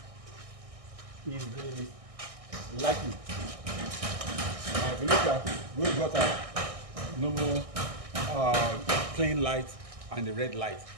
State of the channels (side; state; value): left; late; 1.6 ms